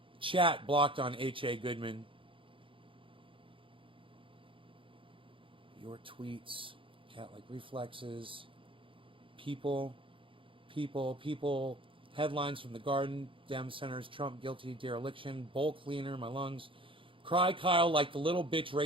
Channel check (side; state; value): left; late; 0.25 ms